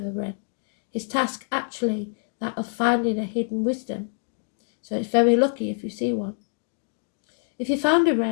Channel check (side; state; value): right; silent; 58 dB below the other